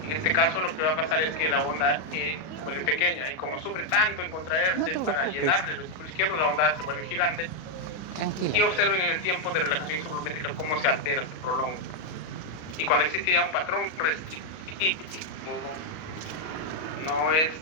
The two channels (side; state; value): right; late; 38 ms